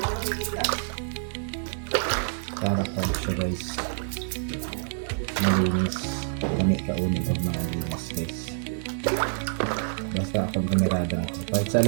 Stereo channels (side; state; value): left; silent; 60 dB below the other